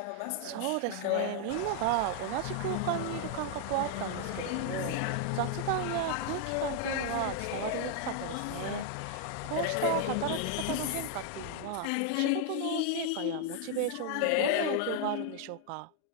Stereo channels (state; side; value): different; both; correlation 0.00